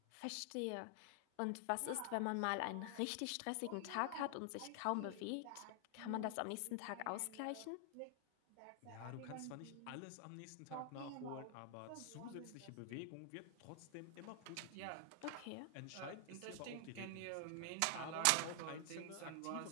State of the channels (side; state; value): both; different; correlation 0.00